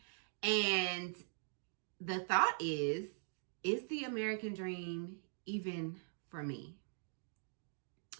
And the thought is the American dream even for me?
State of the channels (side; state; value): left; silent; digital silence